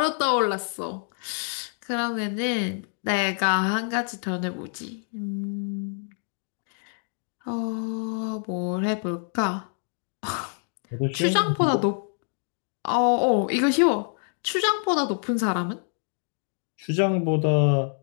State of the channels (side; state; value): right; silent; 61 dB below the other